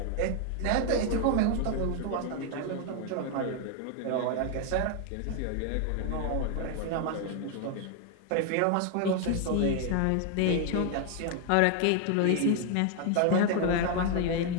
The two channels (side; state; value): both; different; correlation 0.01